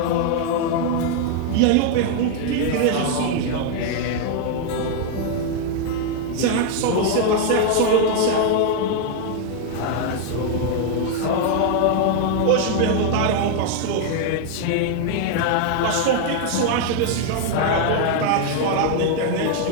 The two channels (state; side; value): different; both; correlation 0.00